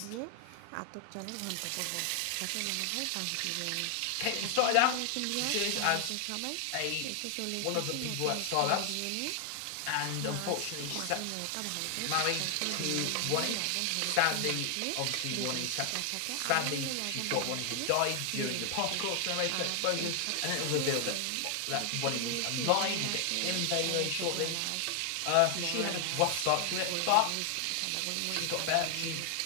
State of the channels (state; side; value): different; both; correlation 0.00